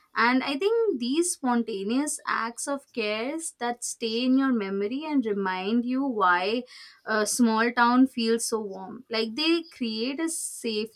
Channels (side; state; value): both; identical; correlation 1.00